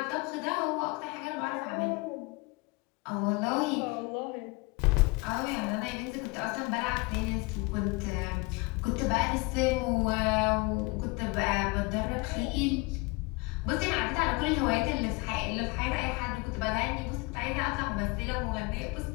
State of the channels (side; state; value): right; quieter; 26.3 dB